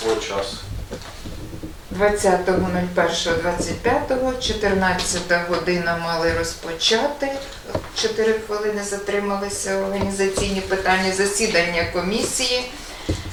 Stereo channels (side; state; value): both; identical; correlation 1.00